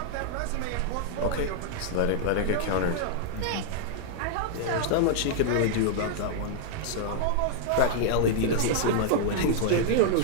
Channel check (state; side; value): different; both; correlation -0.01